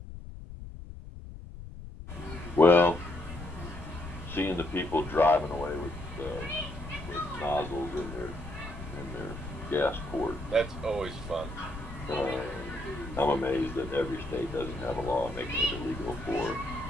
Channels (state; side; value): noise; left; rumble, 12 dB below the sound